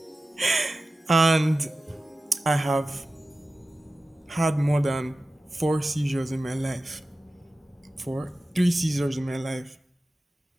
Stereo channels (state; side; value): normal; both; correlation 0.94